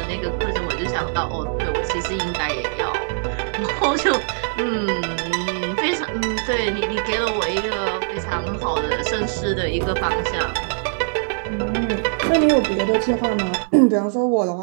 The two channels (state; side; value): silent; left; digital silence